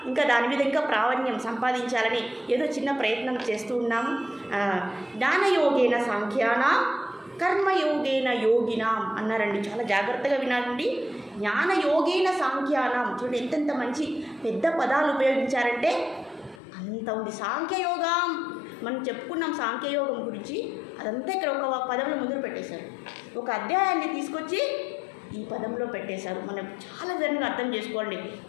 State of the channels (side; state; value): right; drops out; at 16.6 s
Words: ఇంకా దాని మీద ఇంకా ప్రావీణ్యం సంపాదించాలని ఏదో చిన్న ప్రయత్నం చేస్తూ ఉన్నాము. జ్ఞానయోగేన సాంఖ్యానాం కర్మయోగేన యోగినాం అన్నారండి. చాలా జాగ్రత్తగా వినాలండి. జ్ఞానయోగేన సాంఖ్యానాం చూడండి ఎంతెంత మంచి పెద్ద పదాలు ఉపయోగించారంటే అంత ఉంది. సాంఖ్యయోగం మనం చెప్పుకున్నాం, సాంఖ్యయోగం గురించి అదంతా ఇక్కడ ఒక పదంలో ముందు పెట్టేశారు. ఒక అధ్యాయాన్ని తీసుకొచ్చి ఈ పదంలో పెట్టేశారు. మనం చాలా విధంగా అర్థం చేసుకోండి.